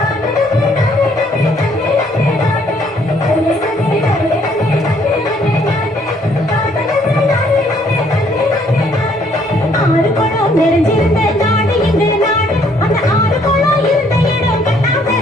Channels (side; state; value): both; normal; correlation 0.65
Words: ஆறு குளம் நிறைஞ்சிருந்த நாடு எங்கள் நாடு அந்த ஆறு குளம் இருந்த இடம்